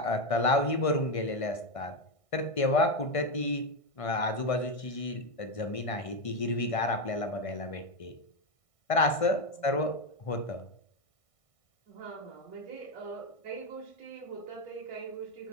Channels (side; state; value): right; late; 1.6 ms